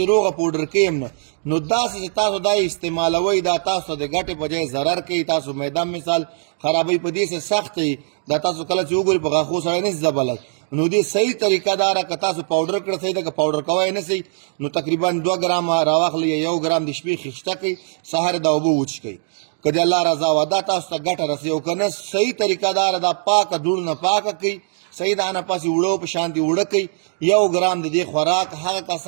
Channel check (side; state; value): left; silent; digital silence